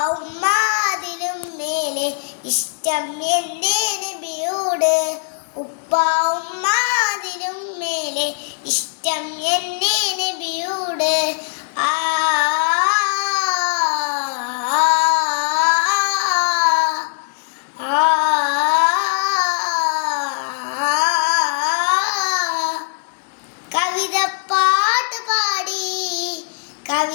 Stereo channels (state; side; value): silent; right; digital silence